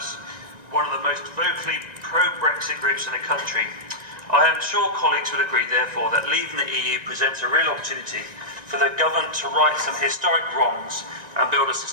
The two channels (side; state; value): left; late; 1.9 ms